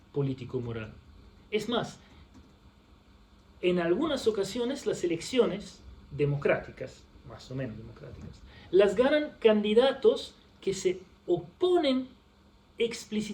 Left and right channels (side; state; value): both; identical; correlation 1.00